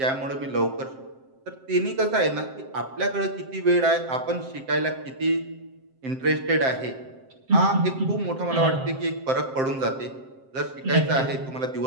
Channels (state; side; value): late; left; 7.6 ms